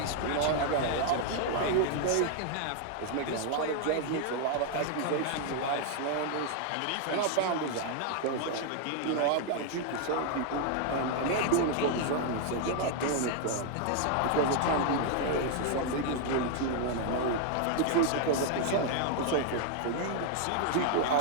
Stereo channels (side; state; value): both; different; correlation 0.00